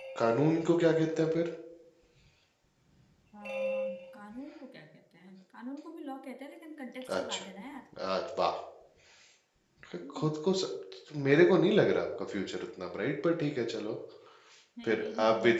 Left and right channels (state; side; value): identical; both; correlation 1.00